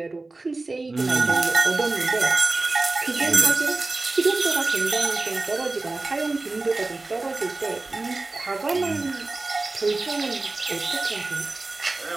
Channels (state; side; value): quieter; left; 3.3 dB